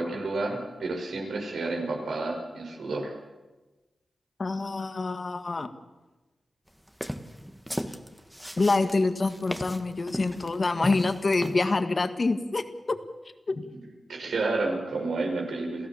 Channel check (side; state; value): both; normal; correlation 0.94